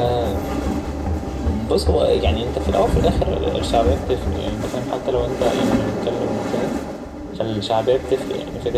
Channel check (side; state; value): both; identical; correlation 1.00